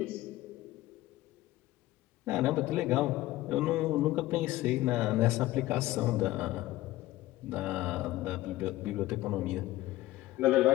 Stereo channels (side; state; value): right; quieter; 16.8 dB